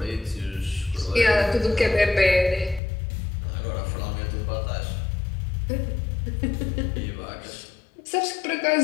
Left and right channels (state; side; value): drops out; right; at 2.8 s